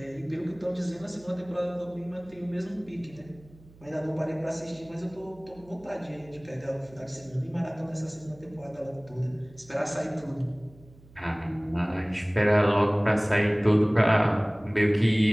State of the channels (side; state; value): right; noise; hum, 24 dB below the sound